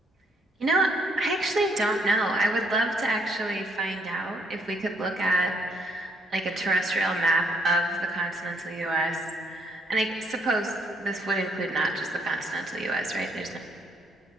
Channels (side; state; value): both; normal; correlation 0.69